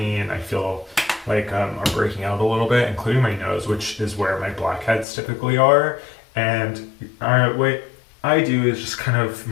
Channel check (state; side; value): drops out; right; at 5.1 s